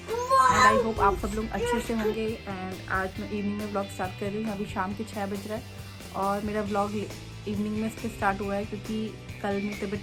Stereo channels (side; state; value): both; identical; correlation 1.00